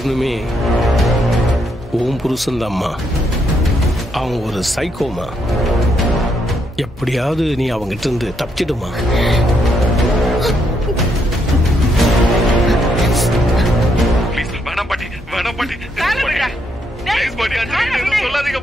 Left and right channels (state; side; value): normal; both; correlation 0.76